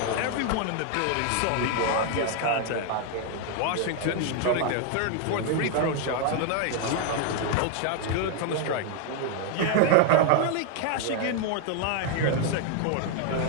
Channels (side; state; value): both; different; correlation 0.00